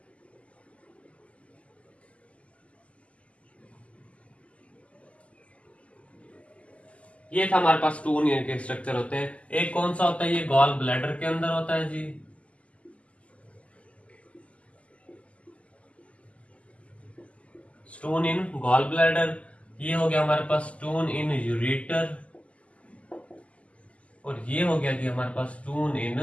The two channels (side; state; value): right; late; 0.062 ms